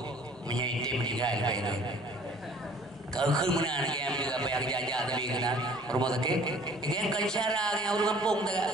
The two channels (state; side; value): noise; left; hum, 26 dB below the sound